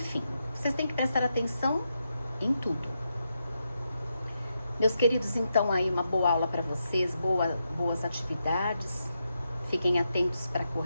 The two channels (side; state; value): both; inverted; correlation -0.85